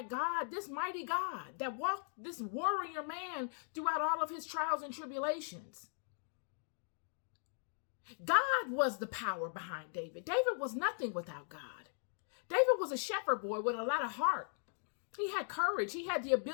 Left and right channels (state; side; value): silent; right; 52 dB below the other